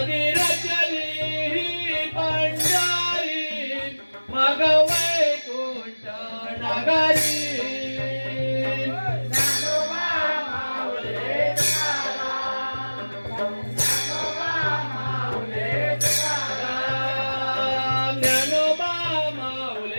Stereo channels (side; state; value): both; inverted; correlation -1.00